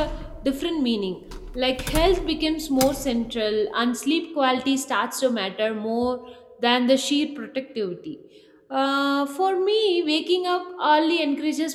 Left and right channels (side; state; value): both; identical; correlation 1.00